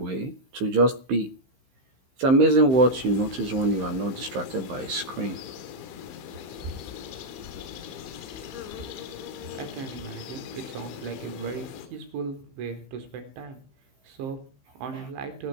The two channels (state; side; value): late; left; 15 ms